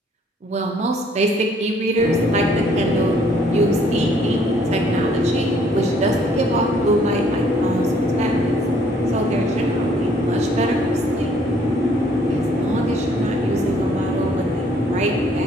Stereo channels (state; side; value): normal; both; correlation 0.63